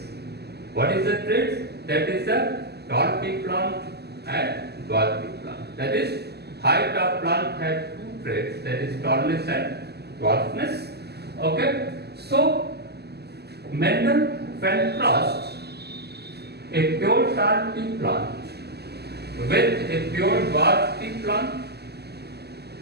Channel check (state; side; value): late; left; 0.47 ms